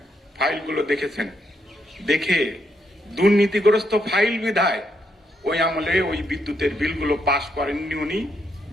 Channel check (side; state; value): both; normal; correlation 0.77